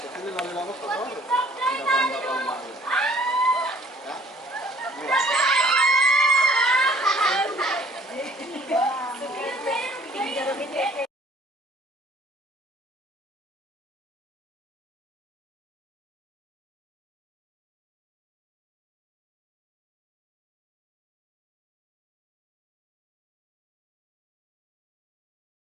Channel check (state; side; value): normal; both; correlation 0.56